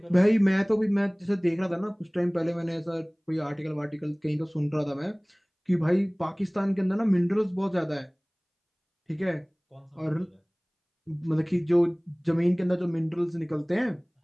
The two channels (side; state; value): both; identical; correlation 1.00